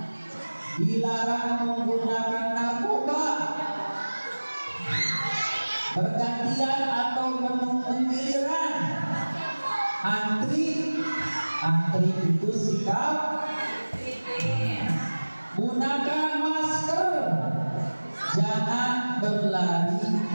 Dilarang menggunakan narkoba, bergantian atau menunggu giliran, antri itu sikap. Gunakan masker, jangan berlari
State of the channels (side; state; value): both; inverted; correlation -1.00